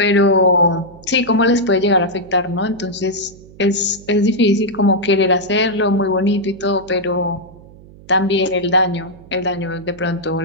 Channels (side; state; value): right; noise; hum, 22 dB below the sound